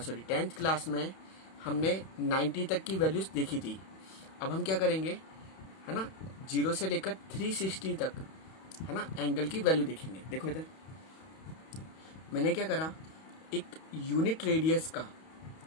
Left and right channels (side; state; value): right; late; 31 ms